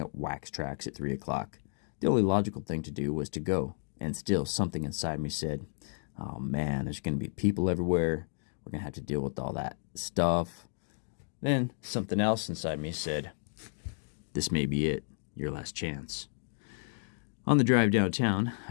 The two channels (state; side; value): silent; right; digital silence